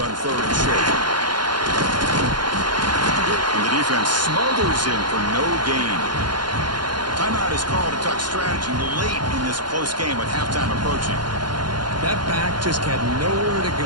on third and short. And the defense smothers in for no gain. Timeout is called to talk strategy late in this close game with halftime approaching. That back just had nowhere to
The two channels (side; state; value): left; late; 0.71 ms